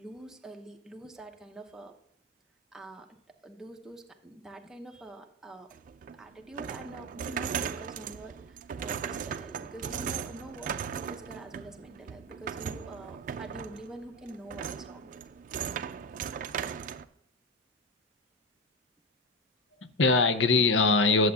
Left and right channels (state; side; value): normal; both; correlation 0.14